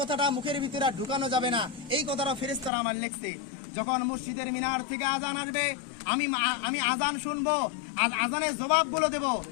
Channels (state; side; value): drops out; right; at 2.7 s